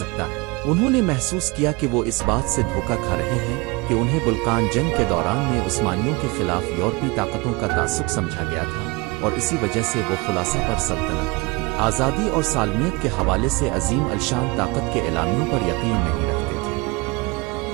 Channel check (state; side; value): quieter; left; 25.9 dB